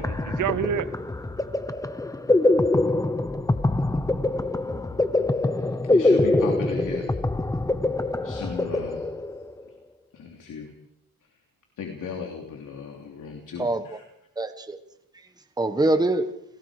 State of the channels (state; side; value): normal; both; correlation 0.79